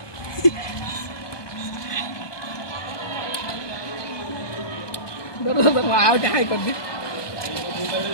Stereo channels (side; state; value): right; late; 1.2 ms